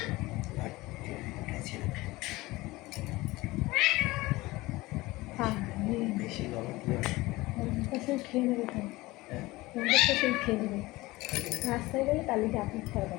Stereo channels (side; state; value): right; quieter; 20.2 dB